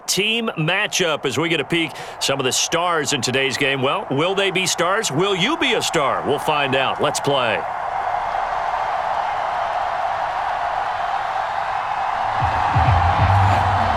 Team matchup as we get a peek some of the stars in today's game. Well, will they be stars? Will you be a star? We'll find out. Let's play.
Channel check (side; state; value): both; identical; correlation 1.00